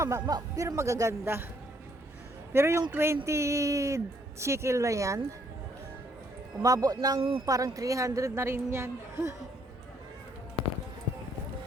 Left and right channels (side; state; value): both; normal; correlation 0.68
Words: magaganda. Pero yung 20 shekel na yan, umabot ng parang 300 na rin yan.